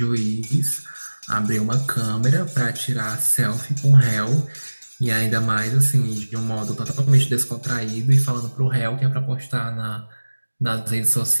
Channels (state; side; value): inverted; both; correlation -1.00